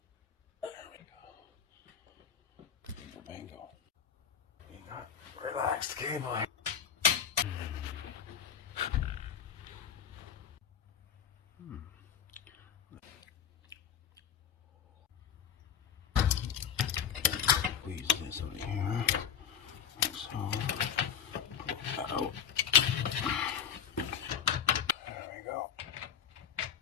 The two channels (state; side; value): quieter; right; 8.2 dB